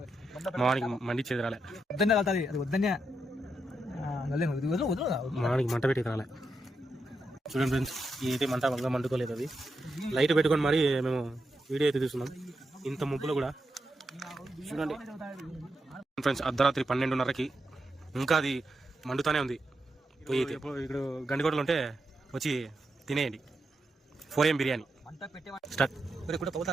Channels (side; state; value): both; normal; correlation 0.85